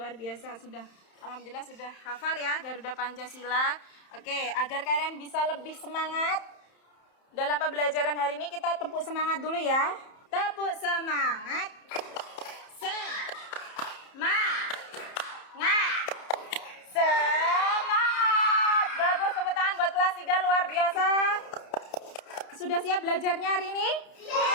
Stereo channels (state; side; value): late; right; 31 ms